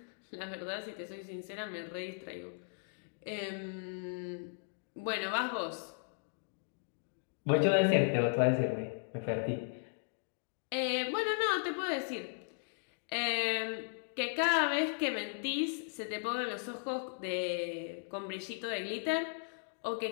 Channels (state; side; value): silent; right; digital silence